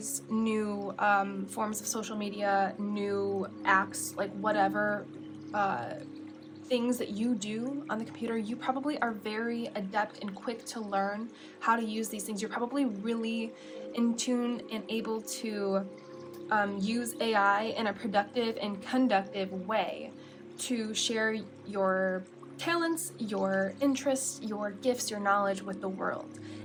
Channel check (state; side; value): identical; both; correlation 1.00